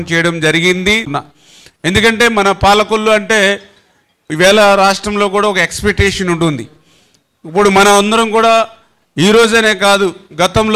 చేయడం జరిగింది. ఎందుకంటే మన పాలకొల్లు అంటే ఈవేళ రాష్ట్రంలో కూడా ఒక ఎక్స్పెక్టేషన్ ఉంటుంది. ఇప్పుడు మనం అందరం కూడా ఈ రోజనే కాదు,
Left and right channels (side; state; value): both; identical; correlation 1.00